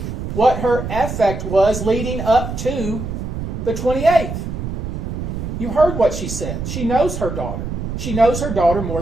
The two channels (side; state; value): right; noise; rumble, 5 dB below the sound